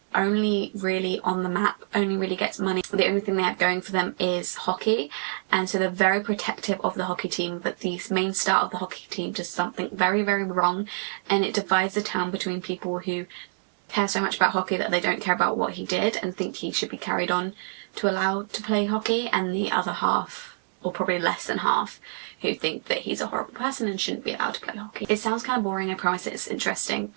only really on the map, only really gets money. The only thing they have going for them is hockey, and so they're very protective of the hockey team, but the main star of the hockey team does something very, very wrong, and it divides the town between people who care so much about hockey that they don't care about what he did and think he should be carried on to allow to play hockey, and the other half, or probably less than half, who think that he's a horrible person and shouldn't be allowed to play hockey. It sounds kind of boring, I promise it's interesting,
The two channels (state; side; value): silent; left; digital silence